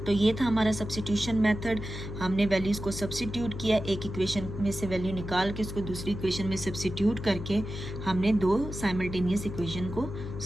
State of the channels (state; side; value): noise; left; hum, 8 dB below the sound